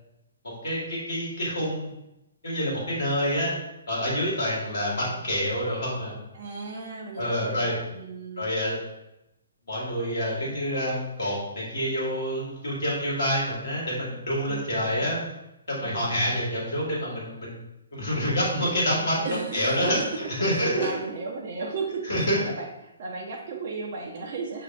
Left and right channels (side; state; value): both; inverted; correlation -0.53